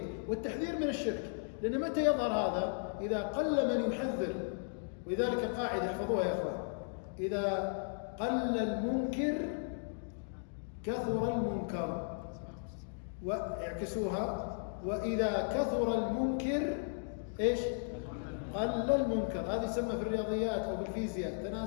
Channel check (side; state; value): right; silent; digital silence